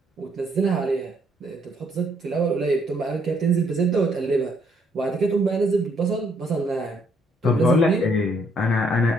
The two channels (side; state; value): both; normal; correlation 0.69